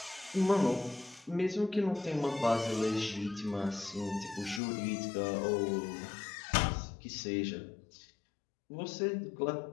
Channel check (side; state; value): right; drops out; at 4.6 s